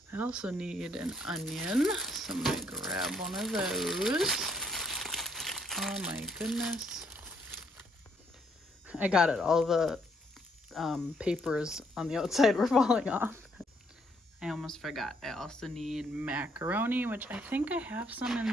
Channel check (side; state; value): both; normal; correlation 0.70